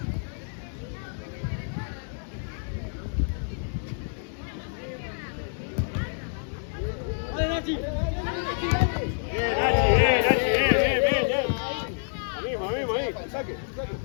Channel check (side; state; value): right; silent; digital silence